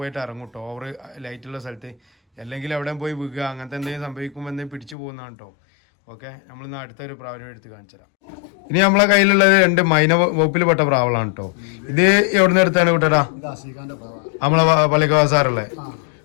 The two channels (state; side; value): drops out; right; at 5.0 s